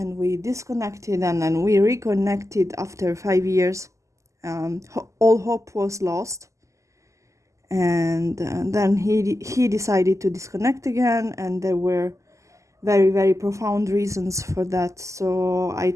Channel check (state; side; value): late; left; 0.15 ms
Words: we disconnected, and then we reconnected after 5 years. All hope was lost, and then he decided to disconnect again, and there were very, very profound reasons for that. So I